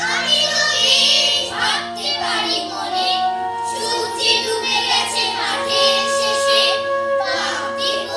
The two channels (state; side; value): identical; both; correlation 1.00